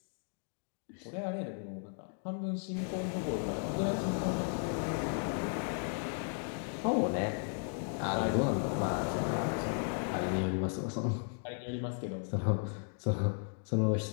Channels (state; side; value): silent; right; 54 dB below the other